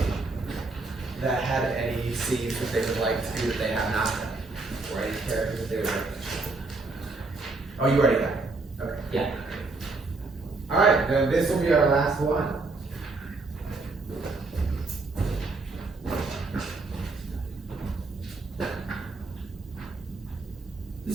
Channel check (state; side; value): quieter; left; 3.5 dB